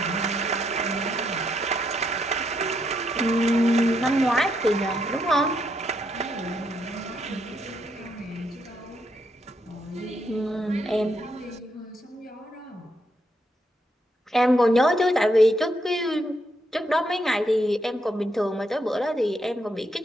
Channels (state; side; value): normal; both; correlation 0.77